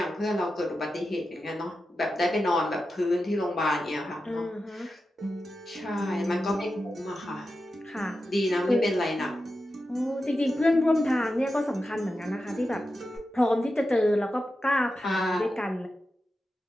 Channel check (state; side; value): normal; both; correlation 0.91